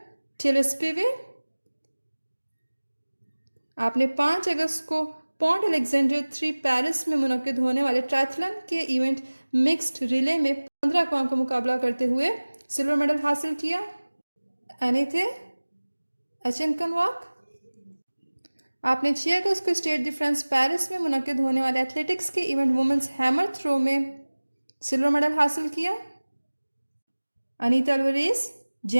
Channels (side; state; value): both; inverted; correlation -1.00